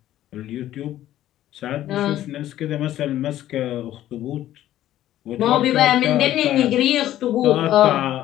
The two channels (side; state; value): right; quieter; 13.1 dB